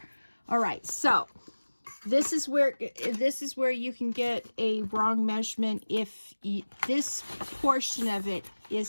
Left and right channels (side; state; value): both; inverted; correlation -1.00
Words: All right, so this is where you can get a wrong measurement if this portion of it